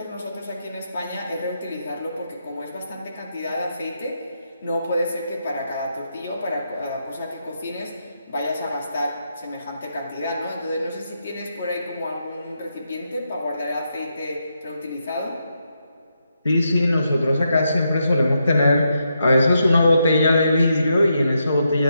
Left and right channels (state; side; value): inverted; both; correlation -0.82